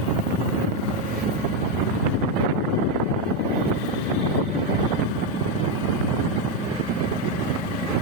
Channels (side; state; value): both; normal; correlation 0.06